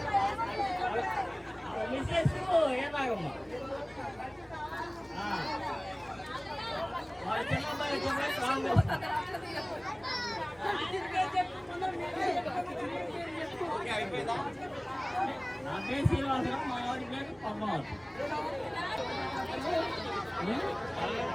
మిస్సెస్ ఏనాగమ్మ. వాళ్ళ చిన్న అబ్బాయి నా పేరు శ్రీనివాసరావు, మా వాడి పేరు పద్మావతి.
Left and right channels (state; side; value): noise; left; hum, 29 dB below the sound